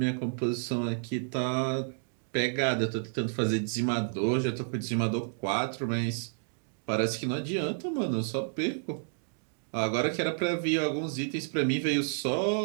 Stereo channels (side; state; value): left; silent; digital silence